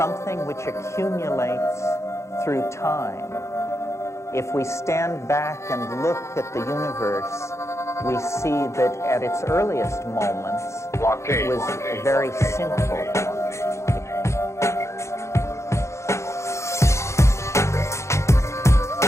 which accumulates through time. If we stand back and look at the universe, we see that at its earliest moments, it was very simple.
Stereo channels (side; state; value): right; late; 0.14 ms